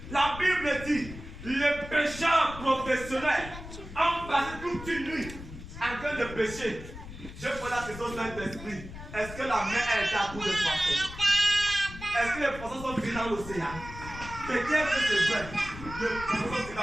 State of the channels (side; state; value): left; noise; rumble, 13 dB below the sound